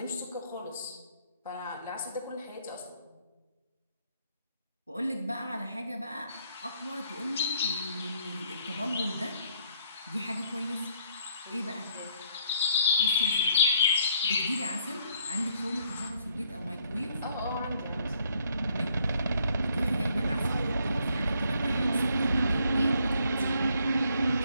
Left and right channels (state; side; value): inverted; both; correlation -0.67